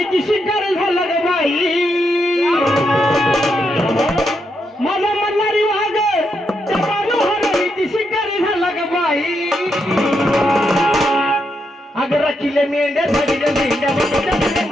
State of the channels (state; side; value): normal; both; correlation 0.81